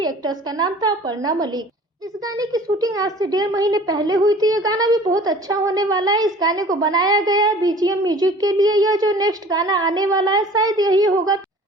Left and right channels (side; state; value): both; normal; correlation 0.46